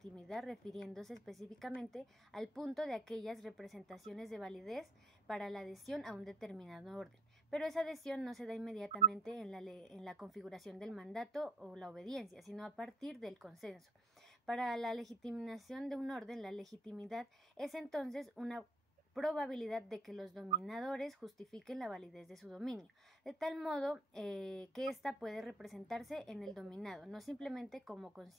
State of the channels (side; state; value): both; normal; correlation 0.63